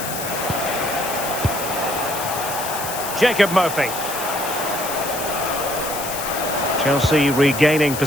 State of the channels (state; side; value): noise; left; hiss, 7 dB below the sound